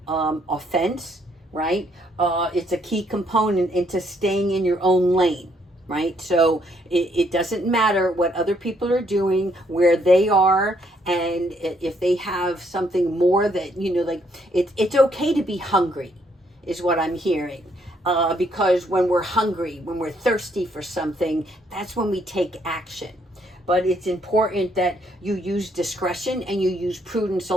offense, right? It's a key component into staying in your own lane. Right? So it doesn't matter what other people are doing, where they are, and if they have something more that, it's okay to be hungry, is what I'm hearing. Because when we're hungry, when we're thirsty for something, that's when we take action. But it's important that you use discretion and you use prudence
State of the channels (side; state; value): both; normal; correlation 0.70